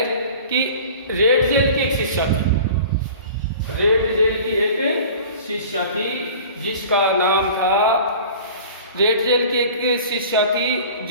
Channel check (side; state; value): both; inverted; correlation -0.42